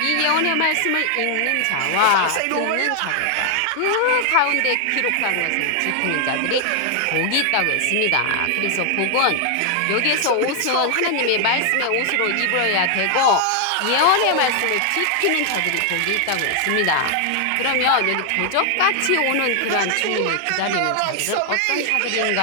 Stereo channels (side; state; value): both; different; correlation 0.00